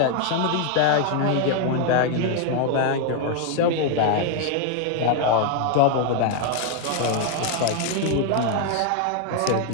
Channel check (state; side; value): different; both; correlation 0.01